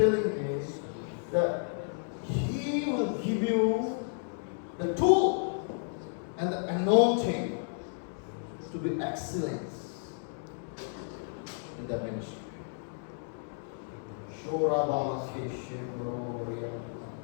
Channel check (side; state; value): right; silent; digital silence